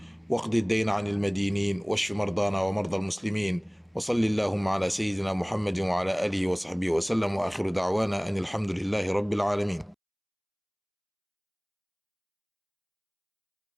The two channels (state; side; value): identical; both; correlation 1.00